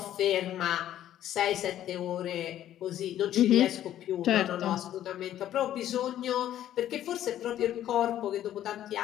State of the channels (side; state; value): right; quieter; 11.9 dB